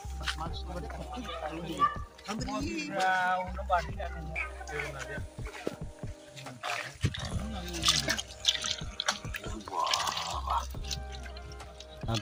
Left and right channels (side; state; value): both; identical; correlation 1.00